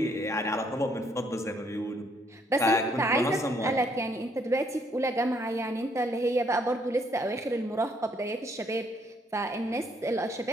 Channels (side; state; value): both; normal; correlation 0.69